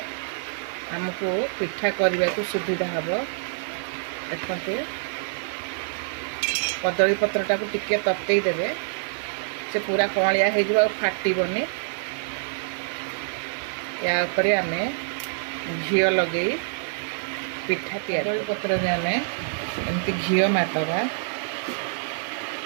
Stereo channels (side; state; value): left; silent; 61 dB below the other